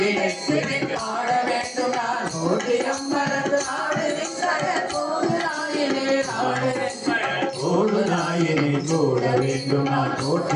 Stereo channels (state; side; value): identical; both; correlation 1.00